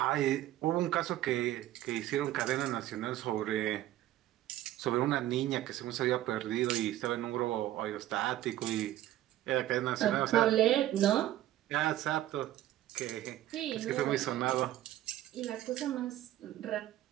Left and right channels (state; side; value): quieter; left; 13.9 dB